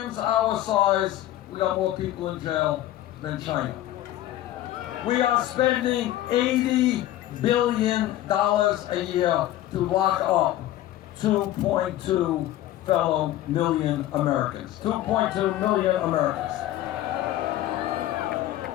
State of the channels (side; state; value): right; quieter; 13.9 dB